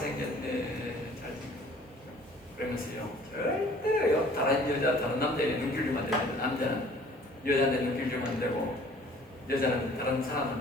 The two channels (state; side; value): normal; both; correlation 0.53